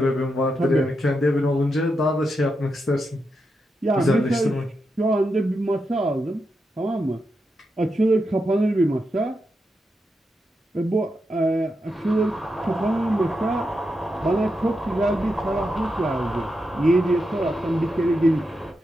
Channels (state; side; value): normal; both; correlation 0.86